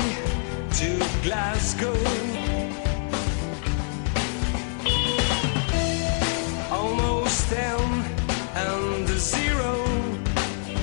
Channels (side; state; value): right; silent; 62 dB below the other